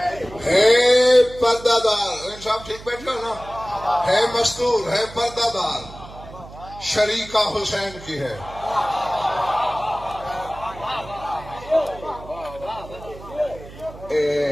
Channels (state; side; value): noise; right; hum, 16 dB below the sound